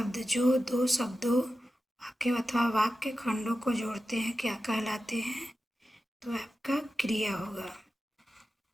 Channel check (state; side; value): normal; both; correlation 0.93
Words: जो दो शब्दों वाक्य अथवा वाक्य खंडों को जोड़ते हैं क्या कहलाते हैं? तो आपका क्रिया होगा।